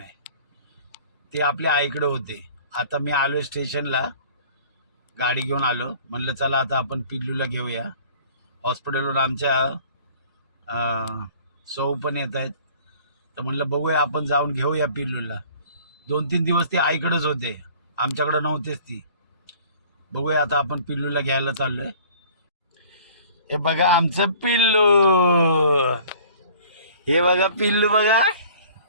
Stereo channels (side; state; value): both; inverted; correlation -0.49